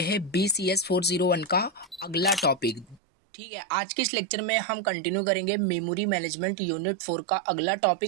है BCS401 का अगला टॉपिक। ठीक है, आज के इस लेक्चर में हम कंटिन्यू करेंगे मेमोरी मैनेजमेंट यूनिट 4 का अगला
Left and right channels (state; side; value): drops out; left; at 3.0 s